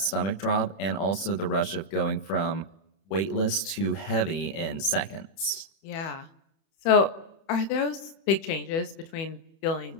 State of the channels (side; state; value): right; late; 31 ms